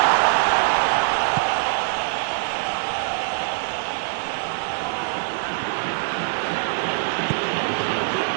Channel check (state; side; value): silent; left; 63 dB below the other